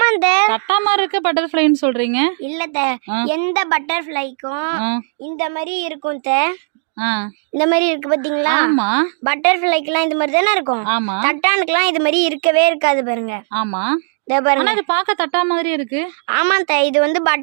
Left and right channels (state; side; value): silent; left; 64 dB below the other